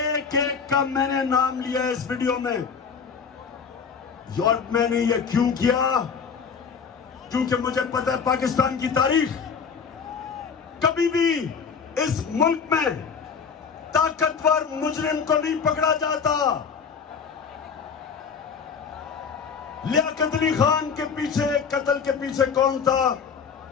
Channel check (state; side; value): quieter; right; 6.1 dB